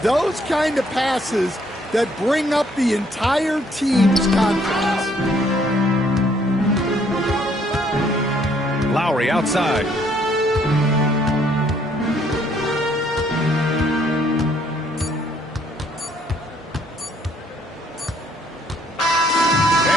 kind of passes that bring up the entire team's confidence. Lowry outside.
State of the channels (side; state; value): both; normal; correlation 0.66